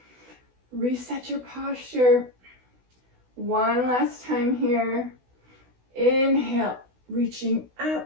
Reset your posture. One last time here. Inhale, reaching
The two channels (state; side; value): late; left; 16 ms